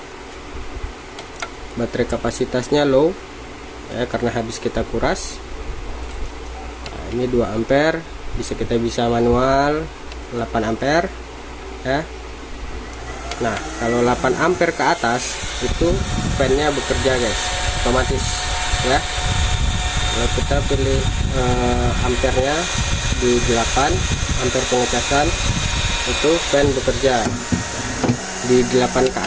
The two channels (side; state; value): both; identical; correlation 1.00